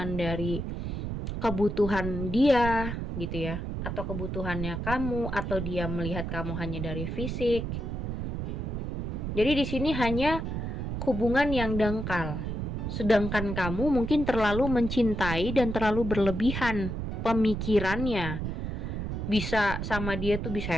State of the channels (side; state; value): right; noise; rumble, 4 dB below the sound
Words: dari kebutuhan dia, gitu ya. Atau kebutuhannya kamu, atau dia melihat kamu hanya dari fisik. Jadi di sini hanya hubungan yang dangkal. Sedangkan kamu mungkin terlalu mencintai dan terlalu berlebihan pemikirannya. Bisa sama dia tuh bisa